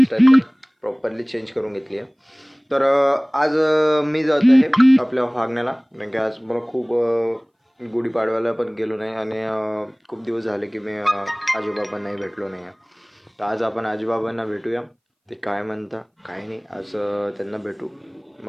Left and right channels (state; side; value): identical; both; correlation 1.00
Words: प्रॉपरली चेंज करून घेतली आहे. तर आज मी जात आहे आपल्या वागण्याला कारण की आज मला खूप गुढीपाडव्याला पण गेलो नाही आणि खूप दिवस झाले की मी आजोबाबांनाही भेटलो नाही आहे. तर आज आपण आजोबाबांना भेटूया, ते काय म्हणता काय नाही, आज त्यांना भेटू.